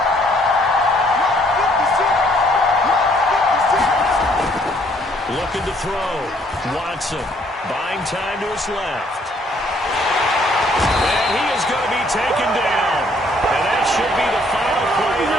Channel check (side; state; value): both; normal; correlation 0.65